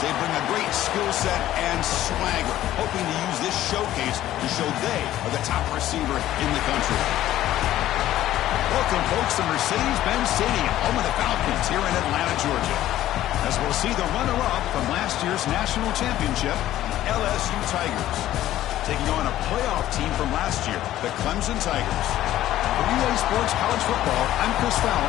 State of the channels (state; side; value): quieter; right; 13.6 dB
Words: They bring a great skill set and swagger, hoping to use this showcase to show they are the top receiver in the country. Welcome, folks, to Mercedes-Benz Stadium, home of the Falcons here in Atlanta, Georgia. As we'll see the runner-up from last year's national championship, LSU Tigers, taking on a playoff team from last year, the Clemson Tigers. For UA Sports College Football, I'm Chris